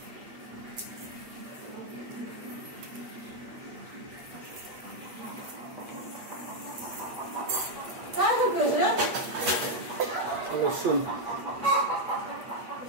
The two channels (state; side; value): late; left; 8.5 ms